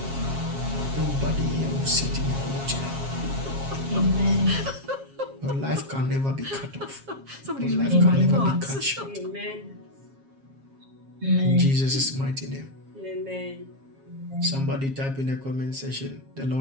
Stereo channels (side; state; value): left; late; 7.4 ms